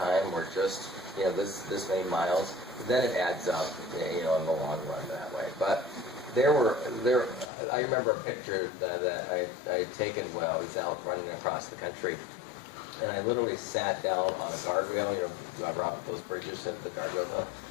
or just, you know, this many miles, then it adds up, you know, in the long run that way. But I remember a picture that I had taken while I was out running across the country, and I literally sat down on a guardrail. You know, you ever off those bridges at the guardrail?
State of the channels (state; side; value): drops out; right; at 7.5 s